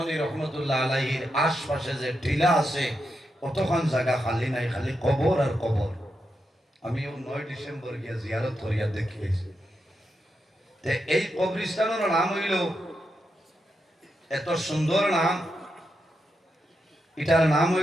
রহমতুল্লাহ আলাইহির আশপাশে যে টিলা আছে, কতক্ষণ জায়গা খালি নাই, খালি কবর আর কবর। আমি 9 ডিসেম্বর গিয়া জিয়ারত করিয়া দেখিয়েছি। এই কবরস্থানের নাম হইল, এত সুন্দর নাম, এটার নাম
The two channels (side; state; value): both; normal; correlation 0.85